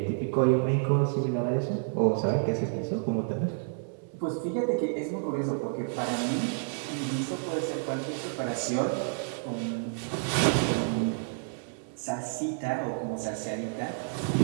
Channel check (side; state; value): left; silent; 58 dB below the other